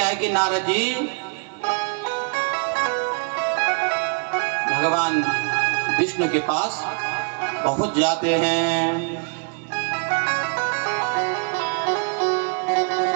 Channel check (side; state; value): left; quieter; 37.9 dB